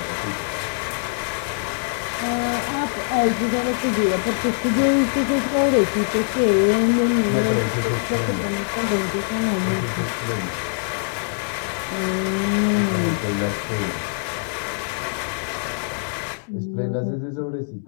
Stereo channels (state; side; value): silent; right; digital silence